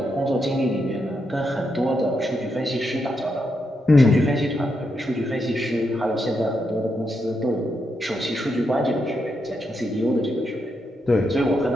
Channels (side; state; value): both; normal; correlation 0.82